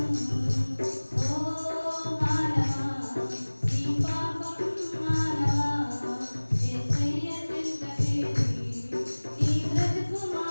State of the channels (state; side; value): inverted; both; correlation -1.00